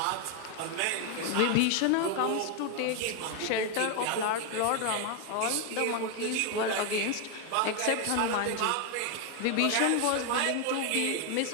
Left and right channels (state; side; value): different; both; correlation 0.01